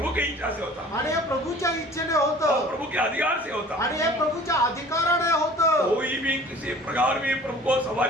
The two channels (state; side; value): normal; both; correlation 0.47